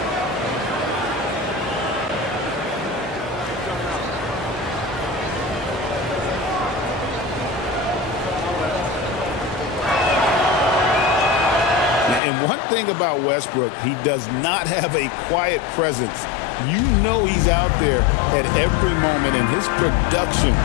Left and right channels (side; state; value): right; drops out; at 12.2 s